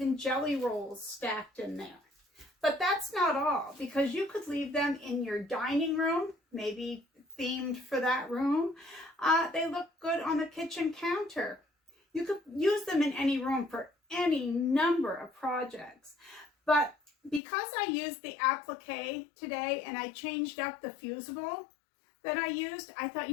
jelly rolls stacked in there. But that's not all, because you could leave them in your dining room, maybe themed for that room. They look good on the kitchen counter. You could use them in any room for any number of projects. But because I used the appliqué today and I changed up the fusible that I used, I thought,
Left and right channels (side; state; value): right; drops out; at 17.4 s